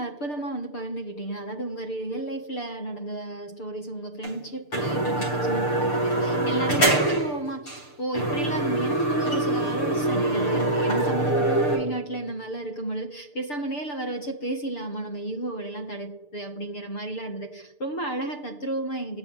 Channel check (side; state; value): right; late; 6.8 ms